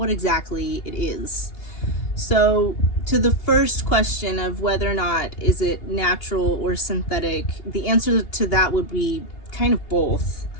exactly it is. So to the first question of whether or not is it natural or synthetic, the answer to that would be kind of both.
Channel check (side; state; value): right; late; 2.8 ms